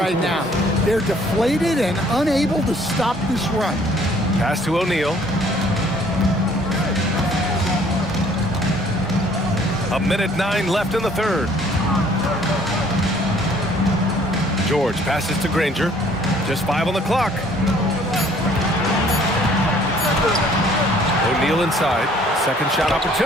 now. They're deflated and unable to stop this run. Pass to O'Neal. A minute 9 left in the third. George passes to Granger. Just 5 on the clock. O'Neal inside. Second shot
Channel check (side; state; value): both; normal; correlation 0.59